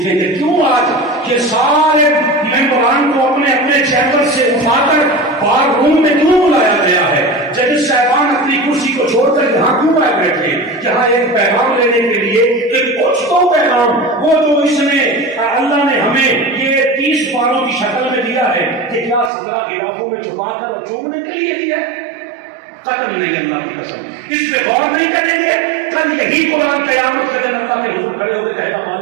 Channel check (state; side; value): drops out; left; at 19.3 s